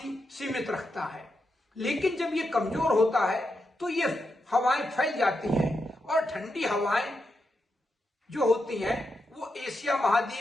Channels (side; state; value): both; normal; correlation 0.85